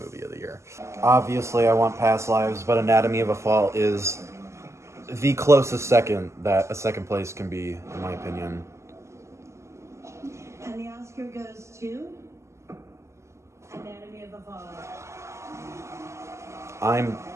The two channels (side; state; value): left; late; 0.13 ms